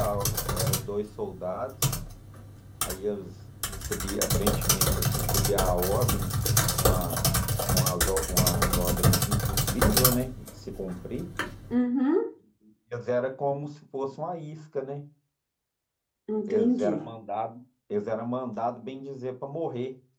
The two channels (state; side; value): identical; both; correlation 1.00